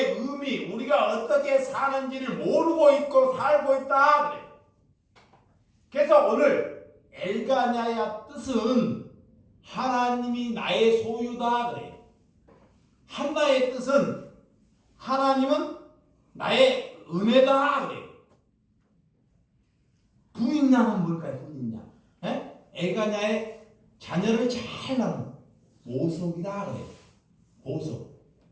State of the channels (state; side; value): identical; both; correlation 1.00